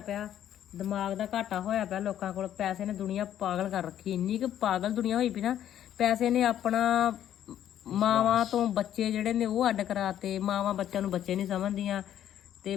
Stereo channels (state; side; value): quieter; right; 10.9 dB